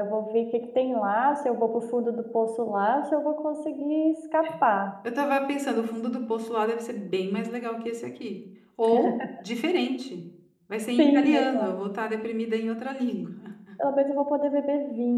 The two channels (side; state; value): both; identical; correlation 1.00